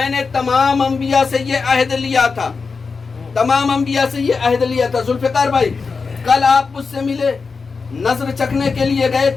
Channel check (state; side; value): quieter; right; 4.8 dB